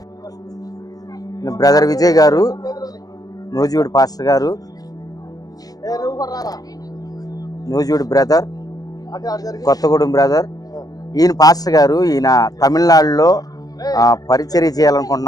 బ్రదర్ విజయ్ గారు, నూజివీడు పాస్టర్ గారు, నూజివీడు బ్రదర్, కొత్తగూడెం బ్రదర్. ఈయన పాస్టర్ గారు. ఈయన తమిళనాడులో పరిచర్య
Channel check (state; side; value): late; right; 0.18 ms